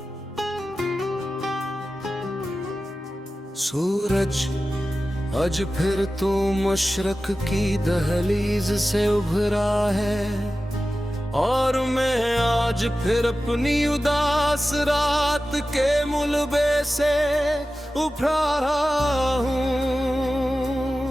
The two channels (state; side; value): normal; both; correlation 0.95